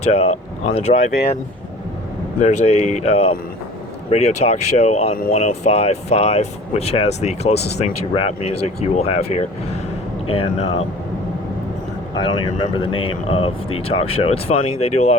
on the drive in, there's a radio talk show on 105.5, which has the closest thing to rap music you will have here. And I don't even remember the name of the talk show. It's funny. They do a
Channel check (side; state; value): both; normal; correlation 0.45